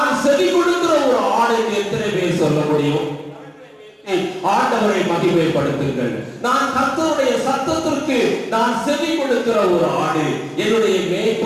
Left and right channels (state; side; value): identical; both; correlation 1.00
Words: செவி கொடுக்கிற ஒரு ஆடு என்று எத்தனை பேர் சொல்ல முடியும்? ஆண்டவரை மகிமைப்படுத்துங்கள். நான் கர்த்தருடைய சத்தத்திற்கு நான் செவி கொடுக்கிற ஒரு ஆடு, என்னுடைய